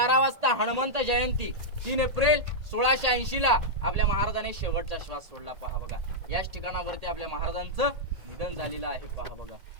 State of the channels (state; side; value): late; left; 1.8 ms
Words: वाजता हनुमंत जयंती 3 एप्रिल 1680 ला आपल्या महाराजांनी शेवटचा श्वास सोडला, पहा बघा. याच ठिकाणावरती आपल्या महाराजांचं निधन झालेलं आहे, पहा बघा.